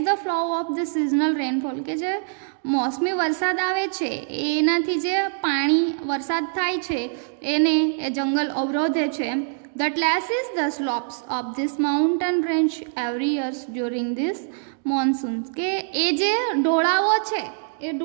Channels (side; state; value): left; silent; digital silence